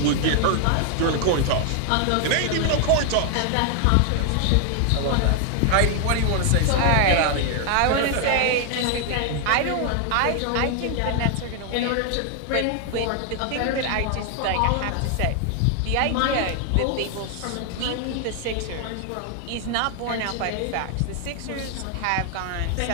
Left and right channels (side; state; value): both; different; correlation 0.00